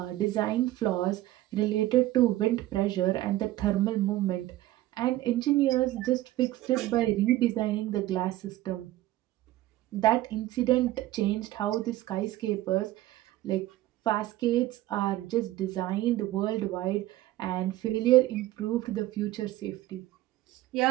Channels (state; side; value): quieter; left; 15.6 dB